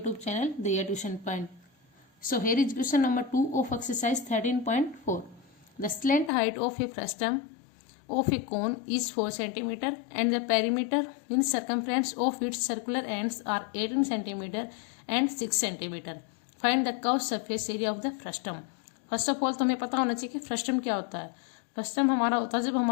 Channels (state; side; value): drops out; right; at 6.3 s